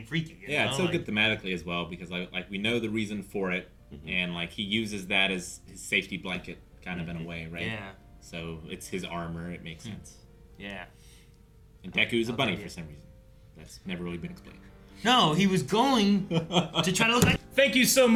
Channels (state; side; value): identical; both; correlation 1.00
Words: freaky. You Yeah, know? it's so like, good thematically as well because like we know the reason for it, and like he uses that as his safety blanket, kind of in a way, right? Yeah. So it's his armor. It makes sense. Yeah. And Deku's a bunny idea. for some reason. That's never really been explained. No, he was going to try to look like. Thank you so